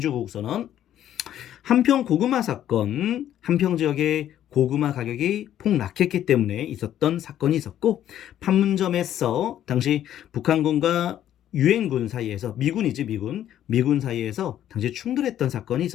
한평 고구마 사건, 한평 지역의 고구마 가격이 폭락했기 때문에 있었던 사건이 있었고, 판문점에서 당시 북한군과 유엔군 사이에서, 미군이지 미군 사이에서 당시 충돌했던 사건이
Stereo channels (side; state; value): right; quieter; 11.3 dB